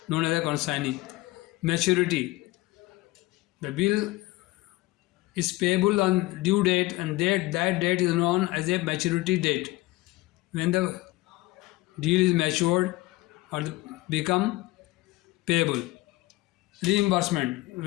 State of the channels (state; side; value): quieter; right; 19.2 dB